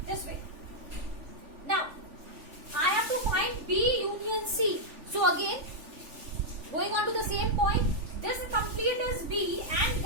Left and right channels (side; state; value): left; late; 3.4 ms